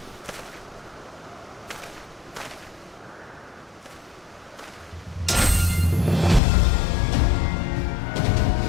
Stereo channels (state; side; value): drops out; right; at 6.4 s